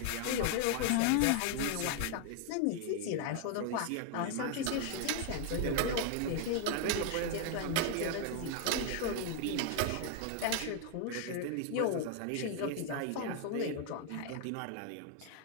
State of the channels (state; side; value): different; both; correlation 0.01